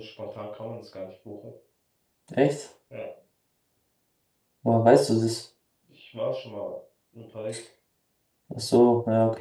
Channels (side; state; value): both; identical; correlation 1.00